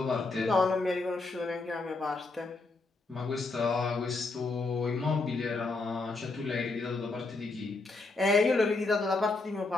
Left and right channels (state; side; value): quieter; right; 3.5 dB